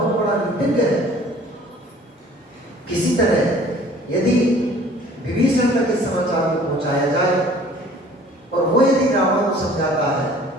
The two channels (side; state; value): both; normal; correlation 0.51